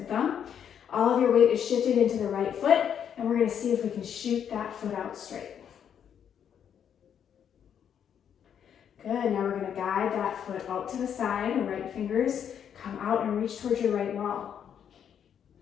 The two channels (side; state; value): right; quieter; 8.6 dB